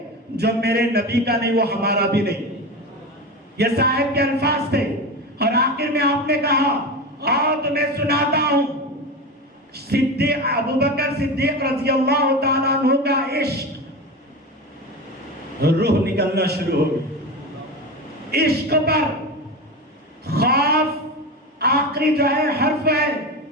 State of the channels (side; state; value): both; normal; correlation 0.23